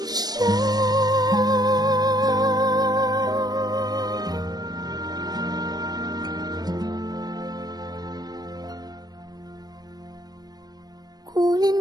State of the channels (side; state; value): left; late; 0.19 ms